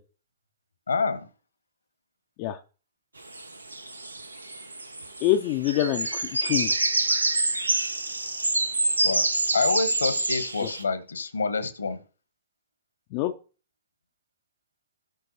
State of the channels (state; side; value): inverted; both; correlation -0.68